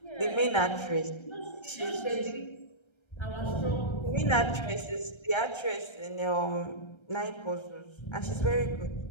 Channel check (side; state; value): right; late; 1.3 ms